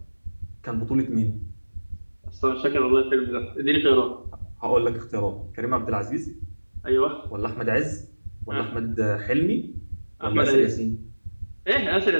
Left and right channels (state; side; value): inverted; both; correlation -1.00